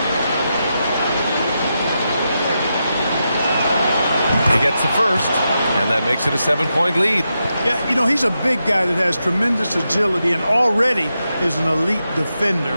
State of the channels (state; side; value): inverted; both; correlation -0.87